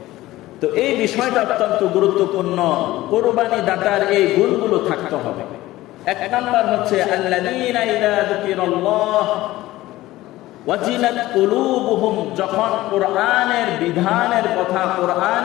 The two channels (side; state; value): right; quieter; 16.8 dB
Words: তো এই বিষয়টা অত্যন্ত গুরুত্বপূর্ণ। কুরবানি দাতার এই গুণগুলো থাকতে হবে। এক নাম্বার হচ্ছে আল্লাযীনা ইযা যুকিরাল্লাহ ওয়াজিলাত কুলুবুহুম, যখন কোরআনের বিধানের কথা,